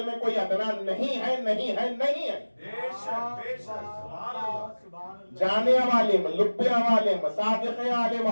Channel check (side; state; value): both; inverted; correlation -1.00